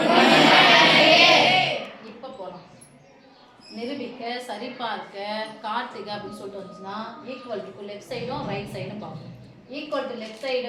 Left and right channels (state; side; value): identical; both; correlation 1.00